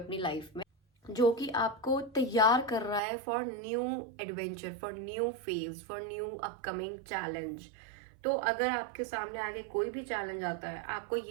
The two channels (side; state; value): left; drops out; at 3.0 s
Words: लाइफ में, जो कि आपको तैयार कर रहा है for new adventure, for new phase, for new upcoming challenge. तो अगर आपके सामने आगे कोई भी चैलेंज आता है, आपको